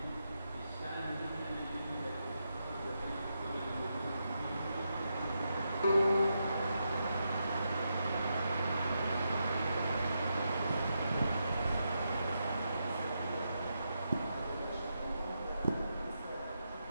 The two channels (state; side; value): inverted; both; correlation -0.84